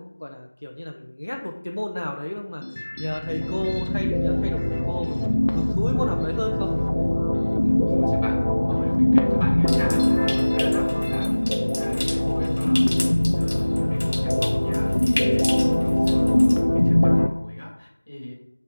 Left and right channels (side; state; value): both; inverted; correlation -1.00